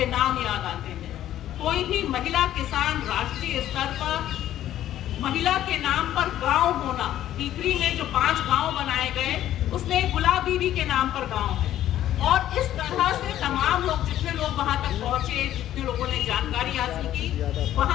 नाम याद आते हैं। कोई भी महिला किसान राष्ट्रीय स्तर पर महिला के नाम पर गांव होना, टीकरी में जो 5 गांव बनाए गए, उसमें गुलाब बीबी के नाम पर गांव है। और इस तरह से तमाम लोग, जितने लोग वहां तक पहुंचे, जितने लोगों ने जानकारी हासिल की,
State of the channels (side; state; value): right; quieter; 12.4 dB